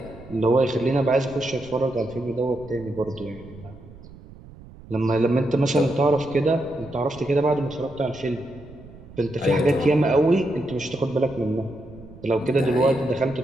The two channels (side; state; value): right; noise; rumble, 19 dB below the sound